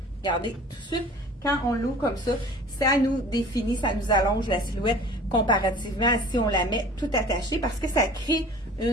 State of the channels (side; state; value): both; normal; correlation 0.45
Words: Regardez, tout de suite, quand on l'ouvre comme ça nous définit, ça nous allonge la silhouette comparativement à si on la met tout attachée parce que ça crée